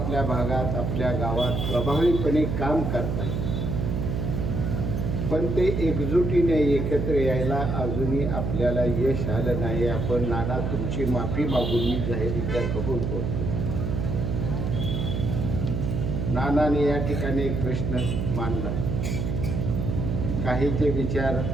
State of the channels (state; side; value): noise; right; hum, 1 dB below the sound